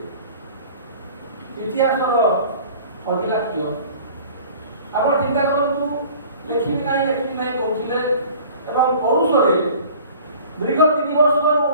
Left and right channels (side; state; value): both; inverted; correlation -0.46